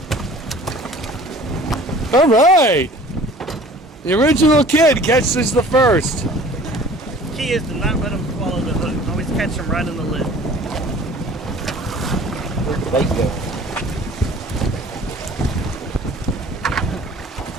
All right. The original kid catches the first. Key is to not let them swallow the hook. Always catch them right in the lid. Where'd the bait go?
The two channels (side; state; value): both; normal; correlation 0.48